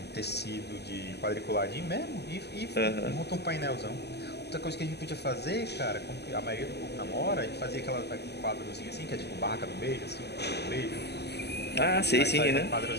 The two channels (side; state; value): right; late; 0.49 ms